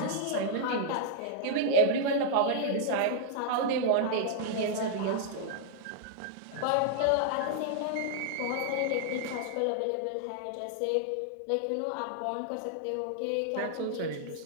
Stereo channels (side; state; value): both; different; correlation -0.01